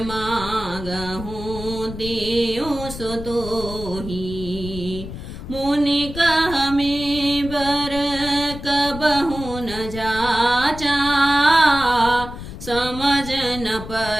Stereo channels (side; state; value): left; noise; rumble, 11 dB below the sound